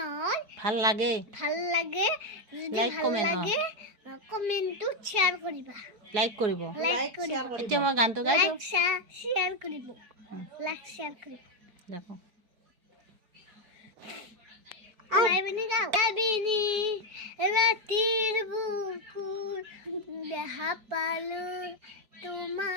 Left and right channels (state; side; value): late; left; 4.6 ms